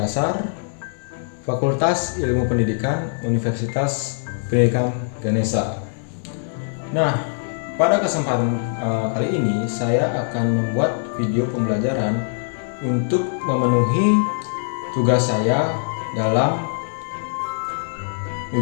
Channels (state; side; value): silent; right; digital silence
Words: Fakultas Ilmu Pendidikan, Universitas Pendidikan Ganesha. Nah, pada kesempatan kali ini saya akan membuat video pembelajaran untuk memenuhi tugas saya dalam